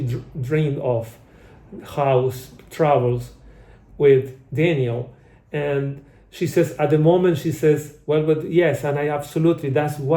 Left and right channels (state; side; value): identical; both; correlation 1.00